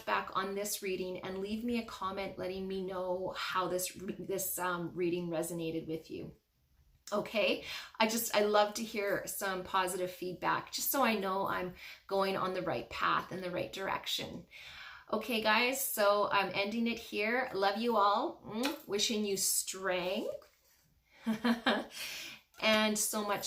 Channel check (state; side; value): identical; both; correlation 1.00